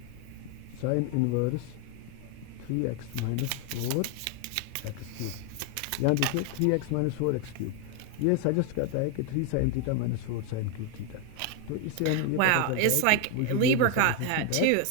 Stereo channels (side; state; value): both; different; correlation 0.01